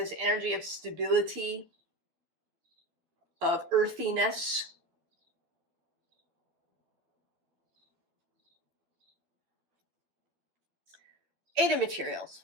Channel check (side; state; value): left; late; 12 ms